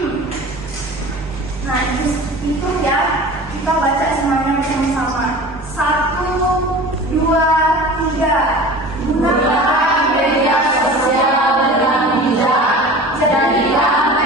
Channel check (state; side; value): normal; both; correlation 0.38